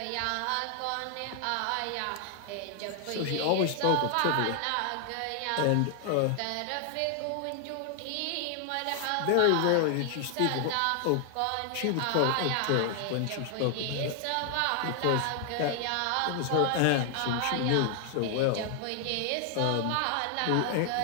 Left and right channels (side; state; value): both; different; correlation 0.00